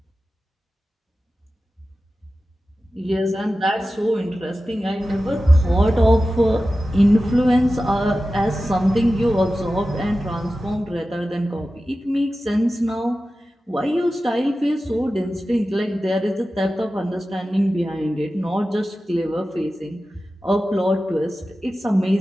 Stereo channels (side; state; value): both; normal; correlation 0.94